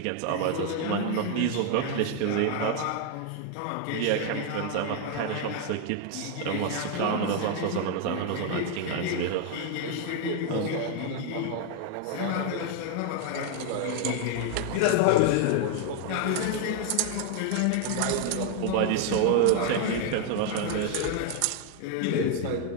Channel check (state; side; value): different; both; correlation 0.01